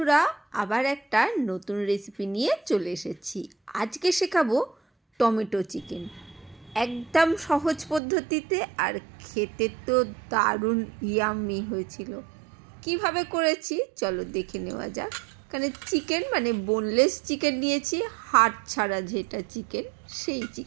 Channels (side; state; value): left; drops out; at 8.0 s